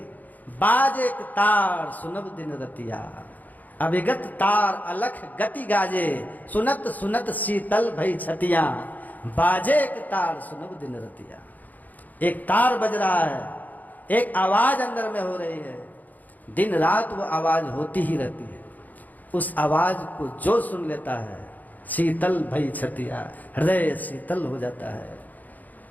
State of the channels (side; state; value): right; late; 0.081 ms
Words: बाजे तार सुनब दिन रतिया, अभिगत तार अलख गति गाजे, सुनत सुनत शीतल भई छतिया, बाजे एक तार सुनब दिन रतिया। एक तार बज रहा है, एक आवाज अंदर में हो रही है, दिन रात वो आवाज होती ही रहती है। उस आवाज को जो सुन लेता है, शीतल भई छतिया, हृदय शीतल हो जाता है।